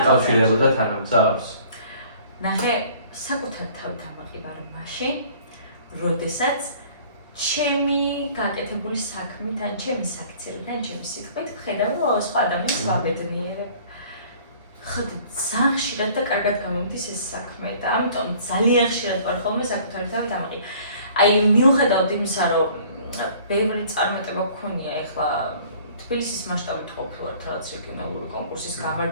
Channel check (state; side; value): inverted; both; correlation -0.52